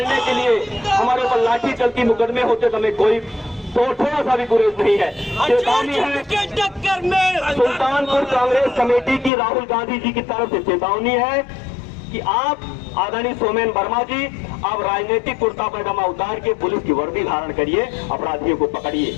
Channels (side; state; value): right; drops out; at 9.3 s